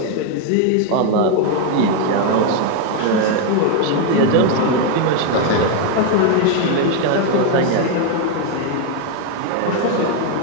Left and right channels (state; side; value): different; both; correlation 0.01